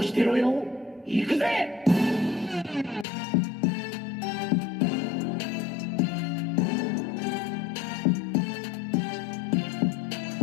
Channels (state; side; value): drops out; right; at 3.1 s